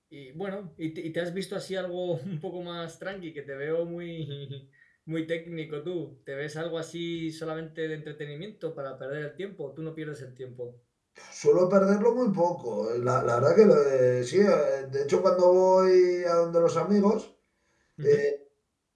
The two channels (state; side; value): identical; both; correlation 1.00